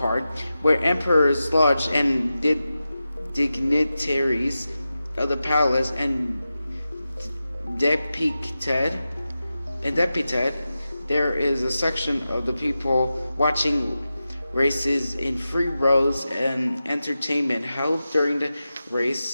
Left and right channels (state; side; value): inverted; both; correlation -0.92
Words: where emperors lodged and dignitaries of the palace and depicted, there is a section of the people watching races in 3 rows and entertainment held during the